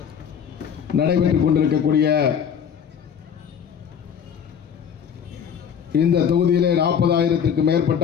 நடைபெற்றுக் கொண்டிருக்கக்கூடிய இந்த தொகுதியிலே 40,000க்கு மேற்பட்ட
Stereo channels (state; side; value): quieter; right; 7.8 dB